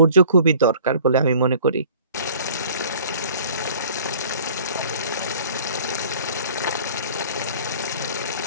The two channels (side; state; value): both; inverted; correlation -0.50